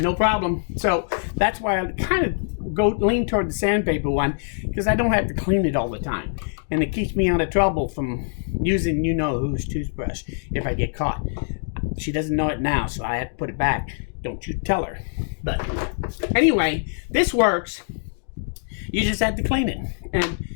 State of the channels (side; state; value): right; silent; digital silence